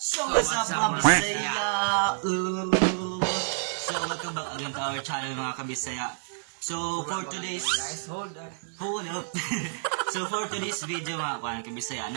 what's up mga Bisaya? So welcome back again to our channel mga kabisaya. So for today's hold up. So for today's video mga kuan kabisaya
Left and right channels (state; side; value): silent; left; digital silence